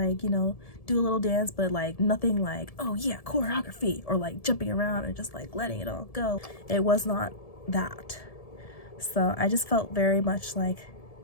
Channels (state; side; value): late; right; 1.7 ms